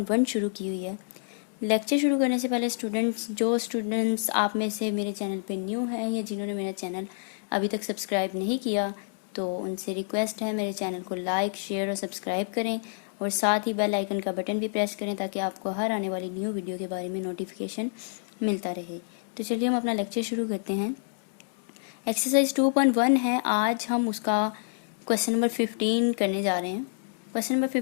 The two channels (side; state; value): right; silent; 59 dB below the other